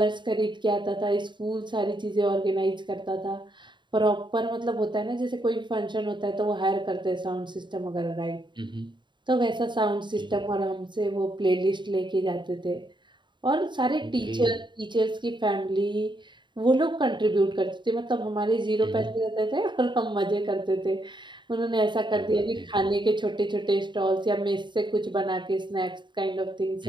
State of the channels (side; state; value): left; late; 0.23 ms